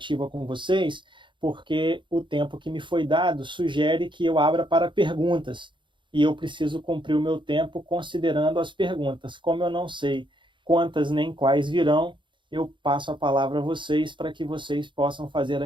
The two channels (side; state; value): left; late; 0.23 ms